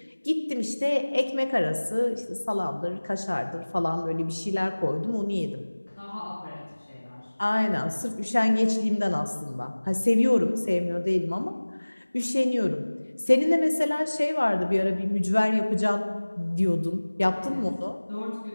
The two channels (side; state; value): both; inverted; correlation -1.00